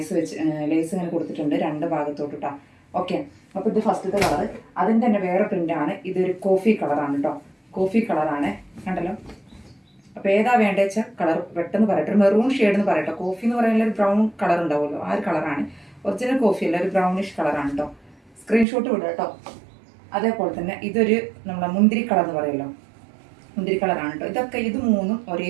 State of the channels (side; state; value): left; drops out; at 18.7 s